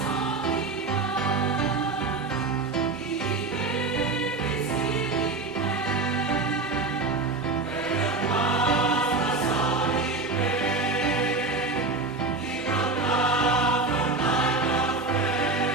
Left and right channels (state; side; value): quieter; left; 3.4 dB